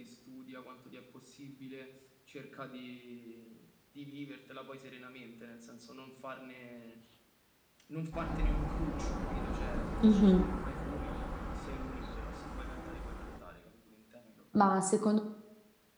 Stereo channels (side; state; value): both; identical; correlation 1.00